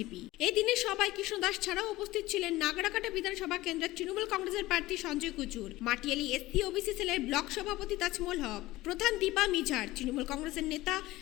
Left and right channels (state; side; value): quieter; right; 18.0 dB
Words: এই দিনে সবাই কৃষ্ণ দাস ছাড়াও উপস্থিত ছিলেন নাগরাকাটা বিধানসভা কেন্দ্রের তৃণমূল কংগ্রেসের প্রার্থী সঞ্জয় কুচুর, মাটিয়ালি এসসি ওবিসি সেলের ব্লক সভাপতি তাজমল হক, প্রধান দীপা মিঝার, তৃণমূল কংগ্রেসের নেতা